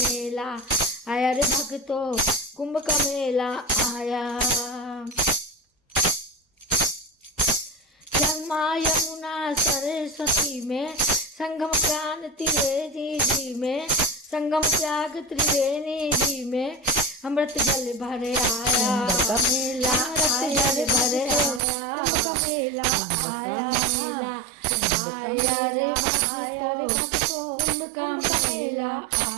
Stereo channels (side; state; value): left; drops out; at 21.6 s